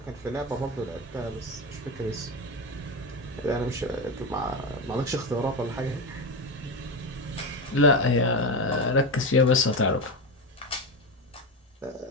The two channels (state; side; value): normal; both; correlation 0.17